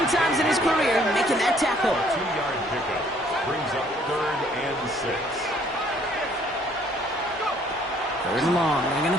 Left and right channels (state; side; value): normal; both; correlation 0.62